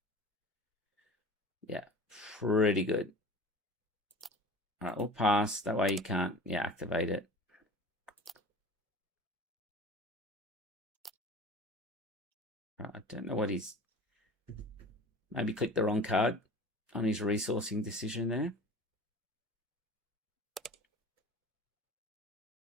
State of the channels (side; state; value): both; normal; correlation 0.40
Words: yeah, pretty good. All right, we'll pass. That way you can't, yeah, activate it. Right, I don't know what he's, maybe clicked the wrong card on his resourcing decision there.